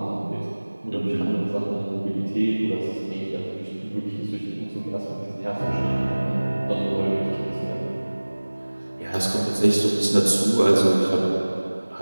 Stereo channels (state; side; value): inverted; both; correlation -1.00